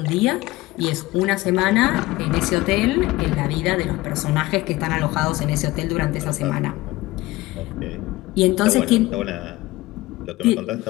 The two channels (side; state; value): right; quieter; 19.0 dB